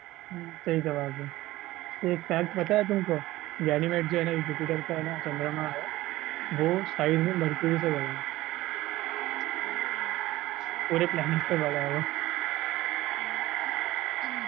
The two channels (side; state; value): left; quieter; 17.1 dB